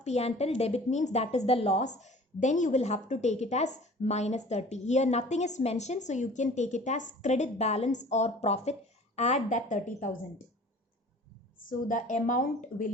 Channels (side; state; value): both; normal; correlation 0.46